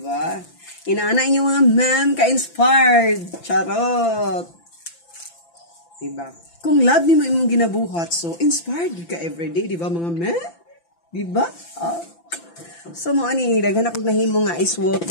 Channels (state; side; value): late; right; 5.9 ms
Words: Inaana inyo mga ma'am ka-inspired. Charot. Di ba? Kung love nimo imong ginabuhat, so inspired ka everyday, di ba mga ma'am? Di ba? So mo ani, daghan ako nahimo nga ice